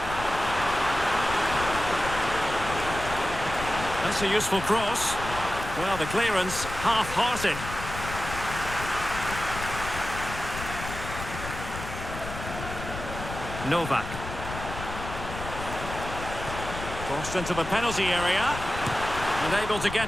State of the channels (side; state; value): left; noise; rumble, 9 dB below the sound